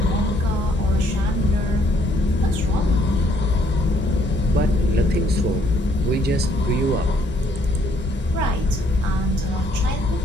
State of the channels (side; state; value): both; normal; correlation 0.66